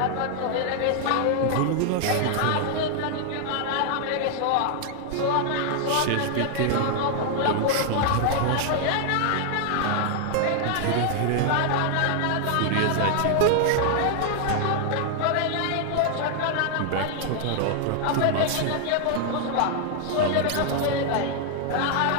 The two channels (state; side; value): different; both; correlation 0.00